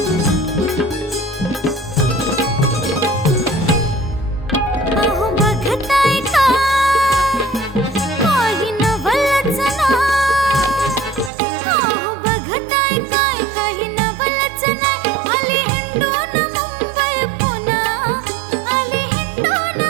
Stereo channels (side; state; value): left; drops out; at 11.3 s